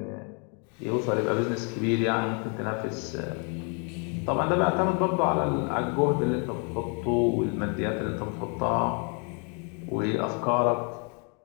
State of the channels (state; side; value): quieter; right; 37.5 dB